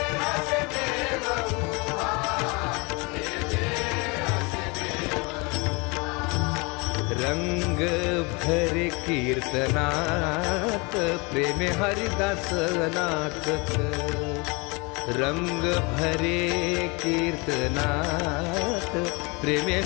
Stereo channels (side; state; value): right; quieter; 28.3 dB